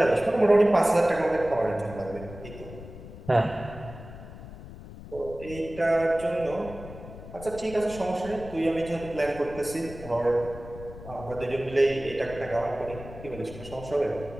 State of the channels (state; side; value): noise; left; rumble, 14 dB below the sound